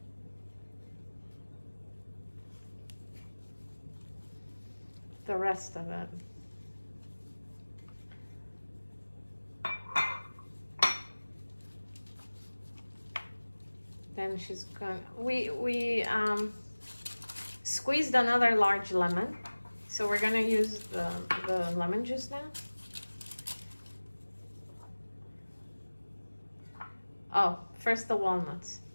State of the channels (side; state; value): both; inverted; correlation -1.00